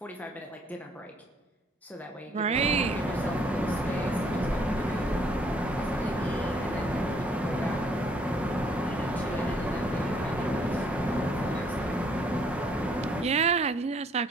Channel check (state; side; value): normal; both; correlation 0.64